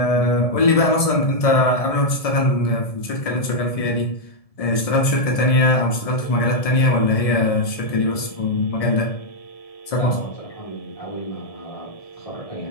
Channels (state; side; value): late; right; 1.7 ms